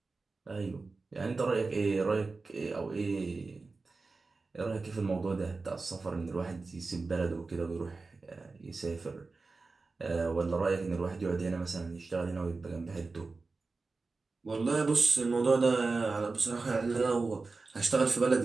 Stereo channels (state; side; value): quieter; left; 3.9 dB